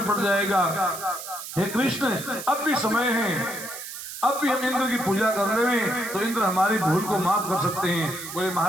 पड़ जाएगा। हे कृष्ण, अब भी समय है, अब भी हम इंद्र की पूजा कर रहे हैं तो इंद्र हमारी भूल को माफ कर सकते हैं। बोले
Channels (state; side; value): noise; right; hiss, 10 dB below the sound